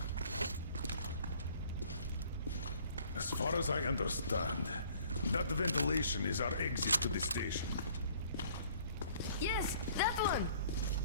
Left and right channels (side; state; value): both; inverted; correlation -0.56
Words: As far as I understand, that ventilation is our exit to the station. Yes, that one!